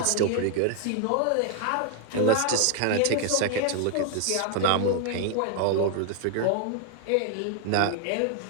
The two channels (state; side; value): different; both; correlation 0.00